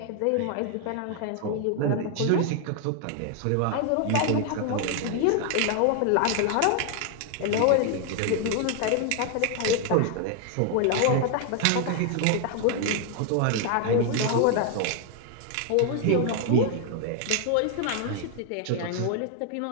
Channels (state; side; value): different; both; correlation 0.00